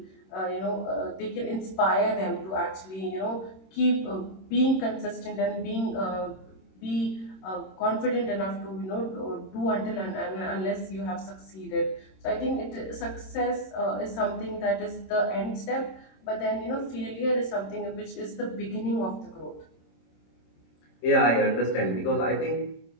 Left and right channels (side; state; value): right; late; 26 ms